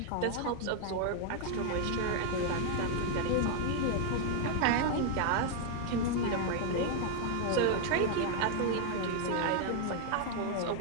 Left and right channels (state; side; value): different; both; correlation 0.00